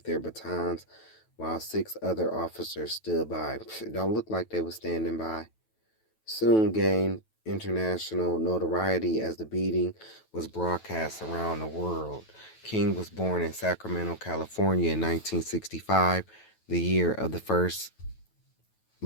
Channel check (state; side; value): late; right; 9.2 ms